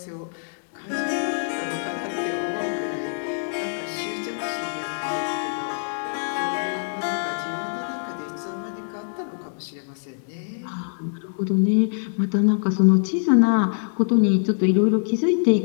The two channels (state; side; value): silent; right; digital silence